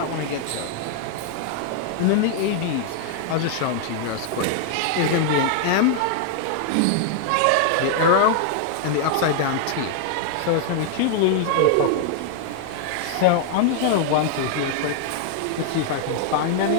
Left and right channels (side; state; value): both; different; correlation 0.00